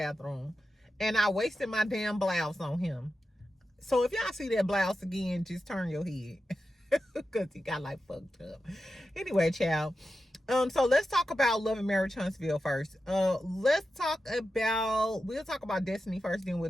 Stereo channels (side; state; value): both; normal; correlation 0.91